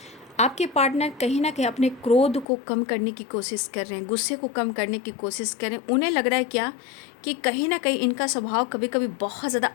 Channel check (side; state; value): right; drops out; at 2.5 s